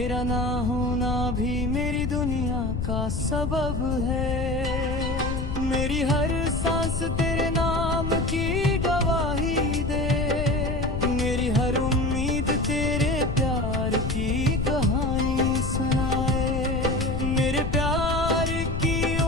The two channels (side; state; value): left; noise; rumble, 3 dB below the sound